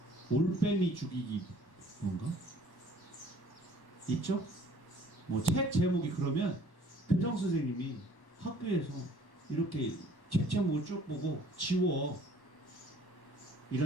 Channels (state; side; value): late; right; 1.1 ms